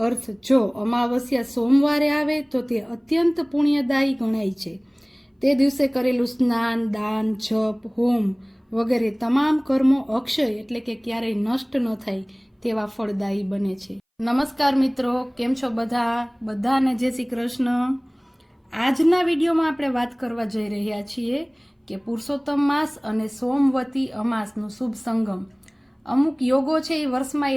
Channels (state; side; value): identical; both; correlation 1.00